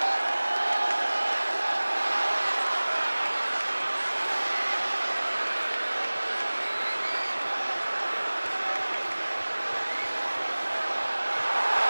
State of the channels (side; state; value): both; inverted; correlation -1.00